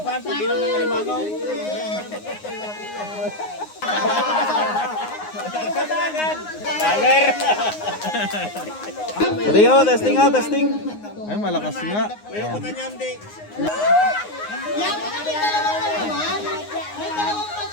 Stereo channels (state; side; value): late; right; 9.6 ms